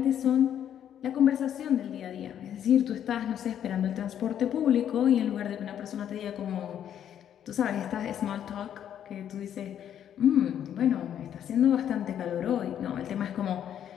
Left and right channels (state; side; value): quieter; right; 9.8 dB